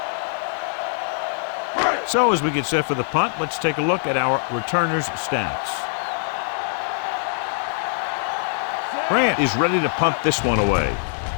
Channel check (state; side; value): silent; right; digital silence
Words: So as we get set for the punt, let's take a look at our returners' stats. Grant is ready to punt this one away.